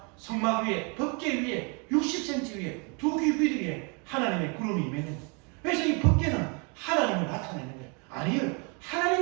성막 위에, 법궤 위에, 60cm 위에, 두 귀 위에 하나님의 구름이 임했는 거예요. 그래서 이 법궤는 하나님을 나타내는 거예요. 아니요,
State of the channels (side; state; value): left; quieter; 33.9 dB